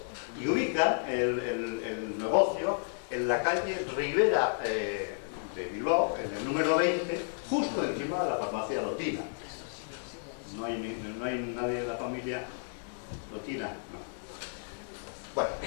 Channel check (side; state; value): right; silent; 56 dB below the other